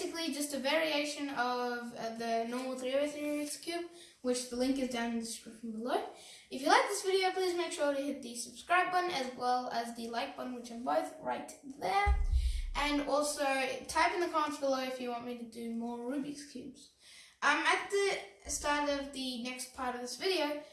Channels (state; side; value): identical; both; correlation 1.00